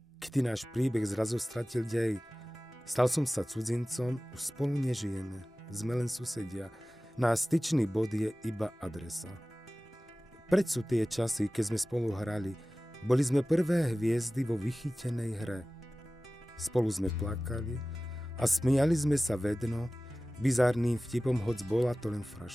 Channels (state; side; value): normal; both; correlation 0.97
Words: Kedy náš príbeh zrazu stratil dej. Stal som sa cudzincom, už spolu nežijeme. Sme len susedia. Náš styčný bod je iba adresa. Preč sú tie časy, keď sme spolu hrali. Boli sme prvé hviezdy vo vychytenej hre. Spolu sme plakali a smiali sme sa vedno, bizárnym vtipom, hoc bola to len